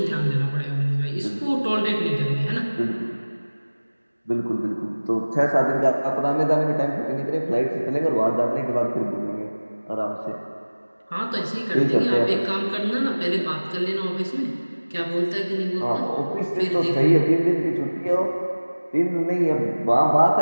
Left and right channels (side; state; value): both; inverted; correlation -1.00